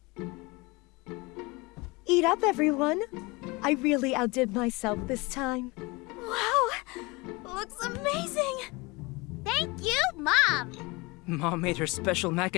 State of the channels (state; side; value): quieter; right; 24.9 dB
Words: Eat up, everyone. I really outdid myself this time. Wow! Looks amazing! Thank you, Mom! Mom made her special mac